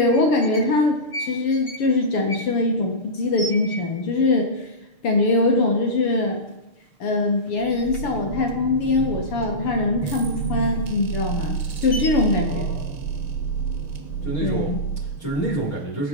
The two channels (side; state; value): right; late; 6.9 ms